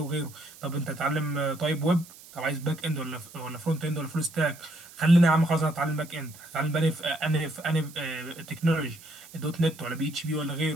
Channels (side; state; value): right; noise; hiss, 20 dB below the sound